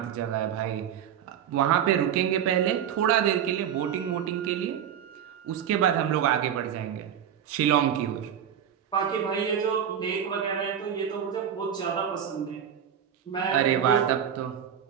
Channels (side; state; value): left; quieter; 9.1 dB